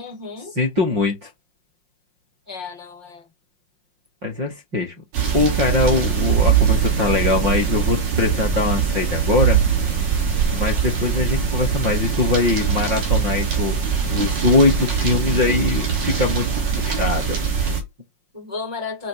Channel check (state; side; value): late; left; 5.6 ms